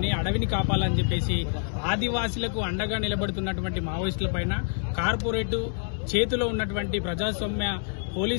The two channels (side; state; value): right; silent; 60 dB below the other